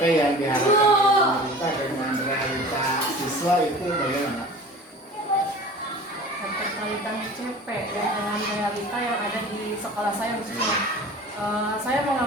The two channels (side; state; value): both; normal; correlation 0.40